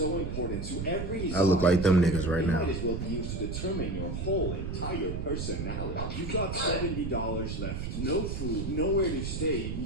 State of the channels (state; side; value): noise; right; rumble, 4 dB below the sound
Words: important to every I look like them niggas right now. might as well be used to determine your whole entire personality. You've got $70 left, no food, nowhere to stay.